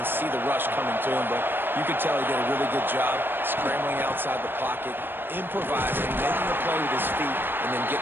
see the rush coming to him. But you can tell he did a really good job scrambling outside the pocket, improvising, making a play with his feet, and then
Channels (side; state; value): left; late; 0.098 ms